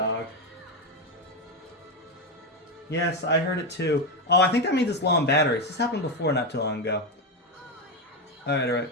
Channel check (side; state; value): both; normal; correlation 0.11